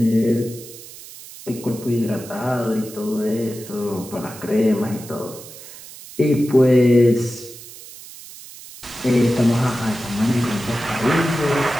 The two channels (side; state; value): right; noise; hiss, 16 dB below the sound